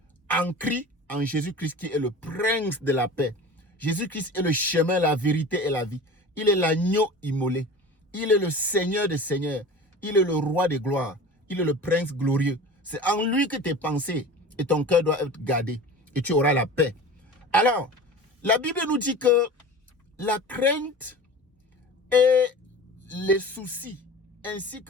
ancré en Jésus-Christ qui est le prince de la paix. Jésus-Christ est le chemin, la vérité et la vie. Il est l'agneau immolé. Il est le Seigneur des seigneurs. Il est le roi des gloires. Il est le prince glorieux. C'est en lui que tes pensées et ton cœur doivent être gardés et tu auras la paix. Alors, la Bible nous dit que la crainte et les soucis ainsi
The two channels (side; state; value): both; normal; correlation 0.36